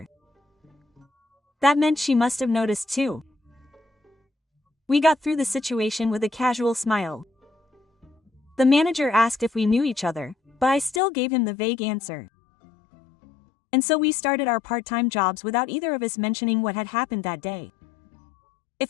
That meant she must have noticed too. We got through the situation with a casual smile. The manager asked if we knew each other, but I still gave him the vague answer. And so we started our part-time jobs without either of us mentioning what had happened that day.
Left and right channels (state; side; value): drops out; right; at 11.0 s